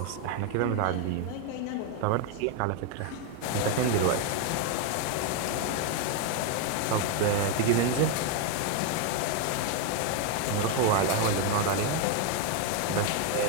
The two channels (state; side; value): different; both; correlation 0.01